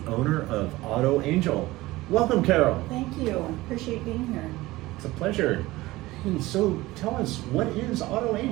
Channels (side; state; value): left; quieter; 18.8 dB